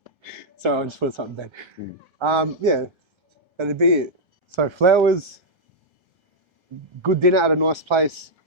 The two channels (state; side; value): late; left; 1.3 ms